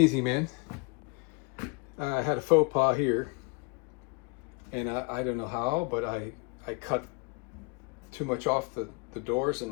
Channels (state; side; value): quieter; right; 30.8 dB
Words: man. I had a faux pas here, and I don't know how, but I cut too much off the doors,